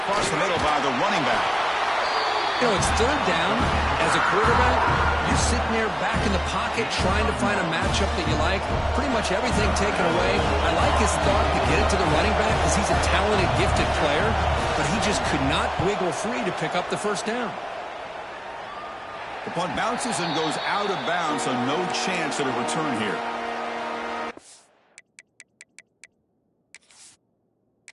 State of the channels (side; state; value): both; identical; correlation 1.00